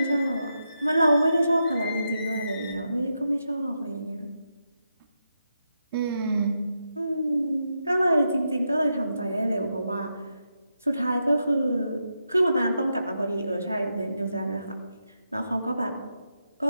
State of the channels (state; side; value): inverted; both; correlation -0.85